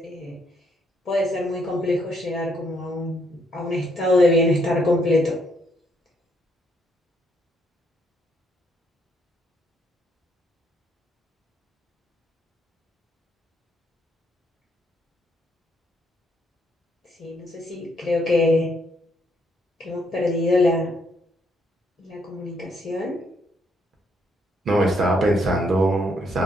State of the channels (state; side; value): normal; both; correlation 0.72